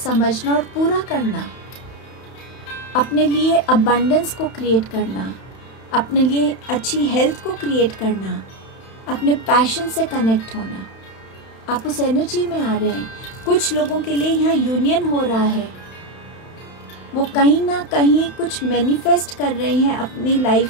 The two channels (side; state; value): right; late; 31 ms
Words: और पूरा करना, अपने लिए अबंडेंस को क्रिएट करना, अपने लिए अच्छी हेल्थ को क्रिएट करना, अपने पैशन से कनेक्ट होना। आप उस एनर्जी में आ रहे हैं। कुछ लोगों के लिए यहाँ यूनियन हो रहा है, वो कहीं ना कहीं कुछ मैनिफेस्ट कर रहे हैं अपनी